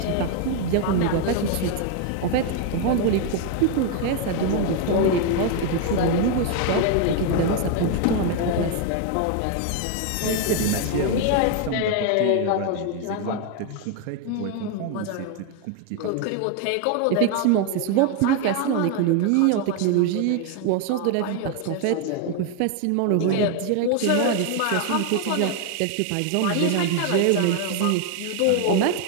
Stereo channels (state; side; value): different; both; correlation 0.01